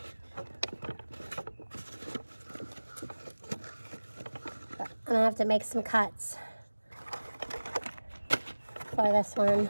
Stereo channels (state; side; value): inverted; both; correlation -1.00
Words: I'm gonna have to make some cuts for this one